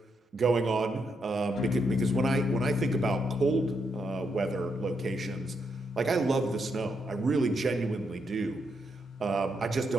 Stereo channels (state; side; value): normal; both; correlation 0.80